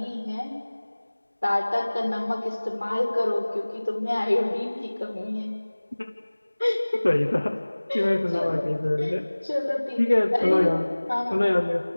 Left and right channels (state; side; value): inverted; both; correlation -1.00